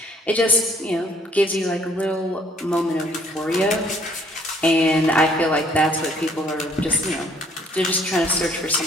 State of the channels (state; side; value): normal; both; correlation 0.62